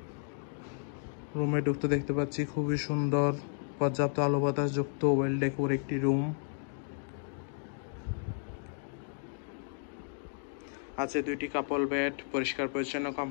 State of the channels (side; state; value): right; silent; 56 dB below the other